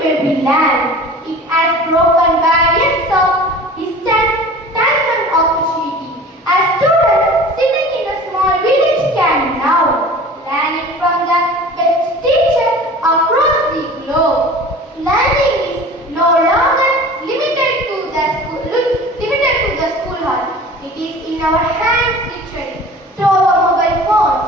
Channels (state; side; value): normal; both; correlation 0.41